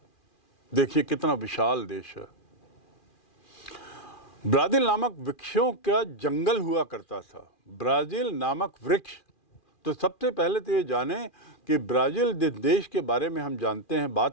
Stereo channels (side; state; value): right; late; 2.4 ms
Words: देखिए कितना विशाल देश है। ब्राज़ील नामक वृक्षों का जंगल हुआ करता था। ब्राज़ील नामक वृक्ष, तो सबसे पहले तो ये जाने कि ब्राज़ील जिस देश के बारे में हम जानते हैं,